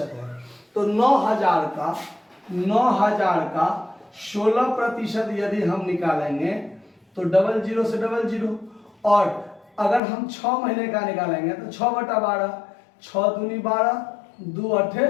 है। तो 9,000 का 16% यदि हम निकालेंगे तो 00 से 00, और अगर हम 6 महीने का निकालेंगे तो 6/12, 6 दूनी 12, 2 अठे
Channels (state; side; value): drops out; right; at 10.0 s